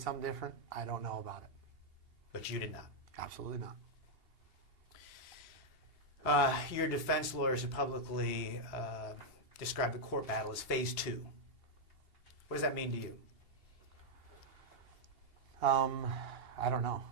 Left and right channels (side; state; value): left; late; 2.8 ms